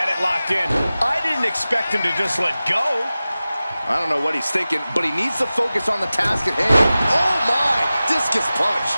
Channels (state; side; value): inverted; both; correlation -0.96